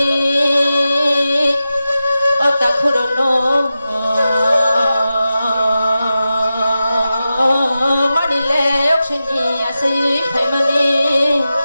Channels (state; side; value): inverted; both; correlation -0.93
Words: অতা খুরনো মানিলে অক্সনি আসি ফাইমানি